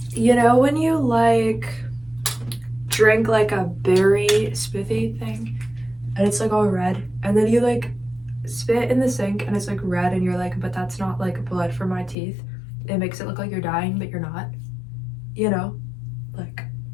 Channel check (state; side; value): drops out; right; at 12.2 s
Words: You know when you like drink like a berry smoothie thing and it's like all red, and then you like spit in the sink and it's like red and you're like, but that's not like blood from my teeth. It makes it look like you're dying, but you're not. You know, like